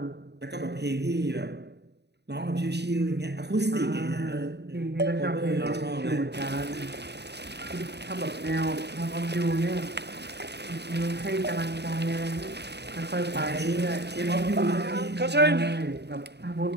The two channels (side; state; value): left; late; 0.49 ms